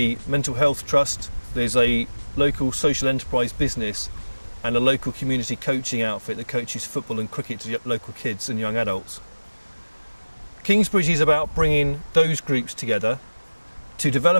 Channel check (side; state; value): both; inverted; correlation -1.00